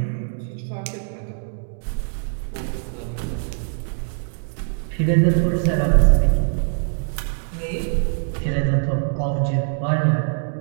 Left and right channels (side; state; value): left; silent; digital silence